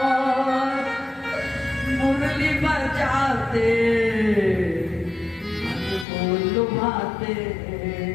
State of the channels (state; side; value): drops out; right; at 6.1 s